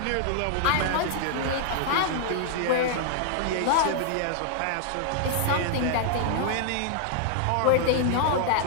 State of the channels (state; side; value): different; both; correlation -0.01